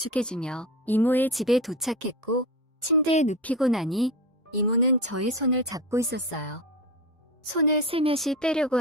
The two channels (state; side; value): normal; both; correlation 0.24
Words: 이모의 집에 도착했고 침대에 눕히고 나니 이모는 저의 손을 잡고 있었어요. 손을 슬며시 빼려고